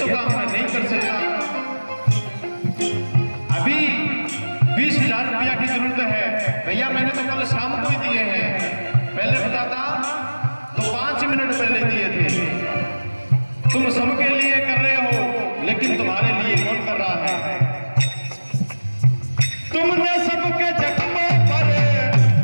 काम मैं नहीं कर सकता, अभी 20,000 रुपया की जरूरत है भैया, मैंने तो कल शाम को ही दिए हैं, पहले बताता तो 5 मिनट पहले दिए थे। तुम सबके लिए कर रहे हो लेकिन तुम्हारे लिए कौन कर रहा है? तुमने सबके जख्मों पर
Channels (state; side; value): inverted; both; correlation -1.00